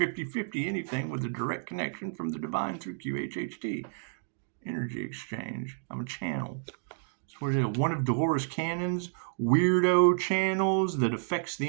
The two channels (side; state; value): left; silent; digital silence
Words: anything with a direct connection from the divine through QHHT. Energy exchange. I'm a channel. That's what it is. One of Dolores Cannon's weirdo channels that affects